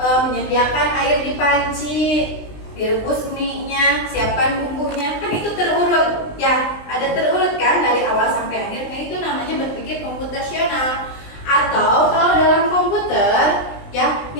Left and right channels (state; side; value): late; right; 20 ms